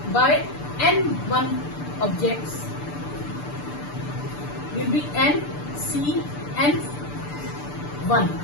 by N1 objects will be N, C, N1.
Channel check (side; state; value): right; late; 6.8 ms